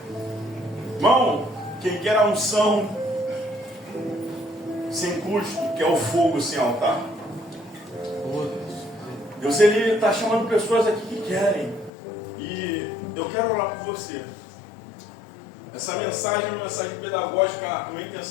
Irmão, quem quer a unção sem custo, que é o fogo sem altar. Oh, Deus. Deus, Ele está chamando pessoas aqui que querem. E eu quero orar por você. Essa mensagem é uma mensagem pedagógica. A minha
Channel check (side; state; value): right; drops out; at 11.9 s